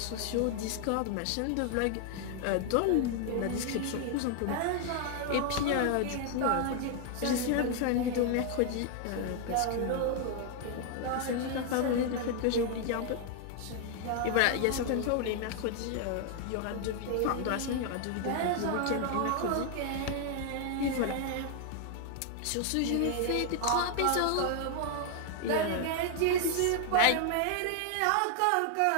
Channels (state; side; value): different; both; correlation 0.00